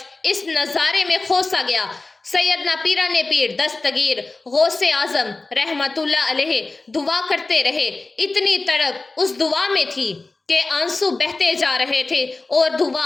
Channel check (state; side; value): quieter; right; 3.4 dB